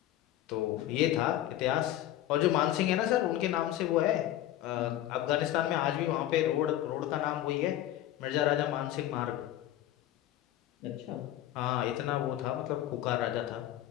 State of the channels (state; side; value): quieter; right; 13.3 dB